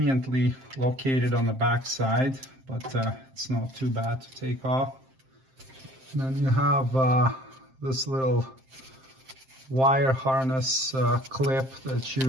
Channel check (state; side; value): late; left; 7.6 ms